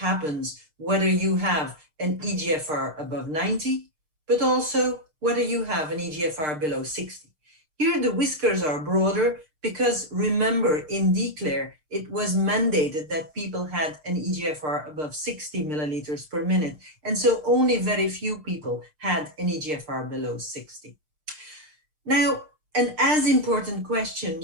whether you have an EGFR above 90, but also whether you have an EGFR below 60. Here the whiskers are broader because, remember, in DECLARE, it was mandated that people had an EGFR above 60 milliliters per minute. And so only very few people had an EGFR below 60. Now, an as important question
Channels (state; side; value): late; left; 6.5 ms